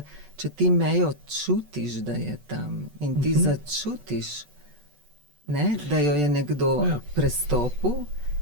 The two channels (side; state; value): left; late; 14 ms